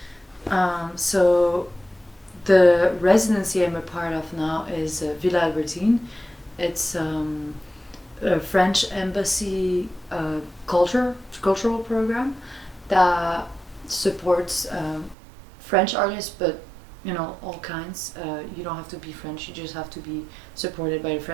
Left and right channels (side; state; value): left; drops out; at 15.2 s